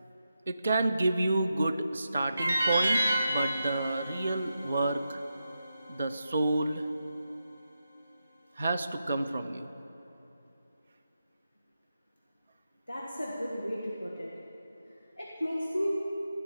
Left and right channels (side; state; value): both; inverted; correlation -0.88